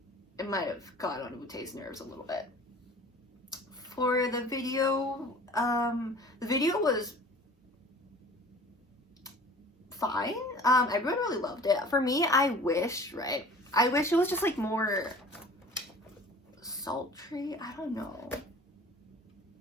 it might have got on Woo-tae's nerves a little bit. For the video was fine. Everyone really loved it. For me, I wish it was just like more sultry. I don't know,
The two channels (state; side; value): normal; both; correlation 0.45